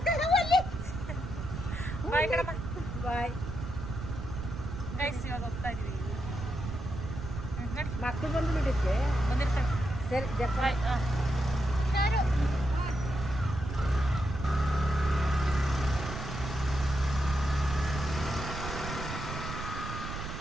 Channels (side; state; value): right; noise; rumble, 7 dB below the sound